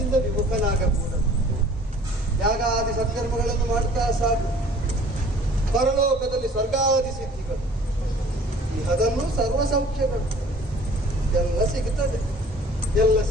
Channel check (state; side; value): normal; both; correlation 0.51